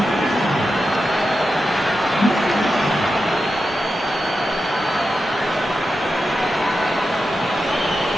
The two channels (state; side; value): normal; both; correlation 0.90